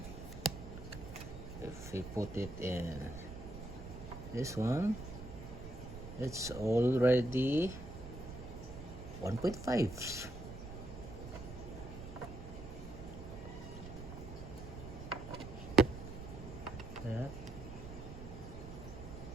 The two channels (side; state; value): right; noise; rumble, 11 dB below the sound